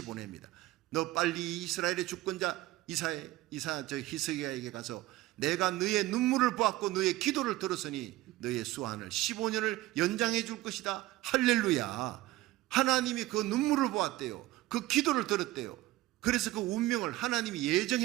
보냅니다. 너 빨리 이스라엘의 주권자 히스기야에게 가서 내가 너의 눈물을 보았고 너의 기도를 들었으니 너의 수한을 15년을 연장해 줄 것이다. 할렐루야. 하나님이 그 눈물을 보았대요. 그 기도를 들었대요. 그래서 그 운명을, 하나님이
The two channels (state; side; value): quieter; left; 17.5 dB